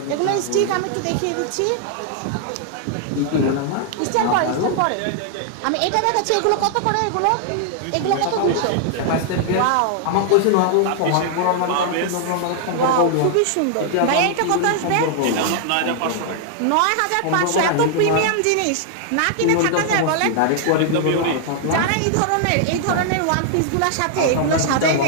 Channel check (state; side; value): different; both; correlation 0.00